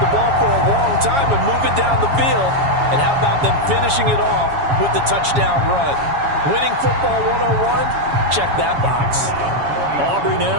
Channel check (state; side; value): late; left; 7.2 ms